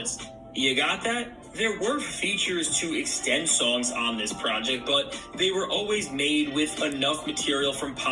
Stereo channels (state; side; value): identical; both; correlation 1.00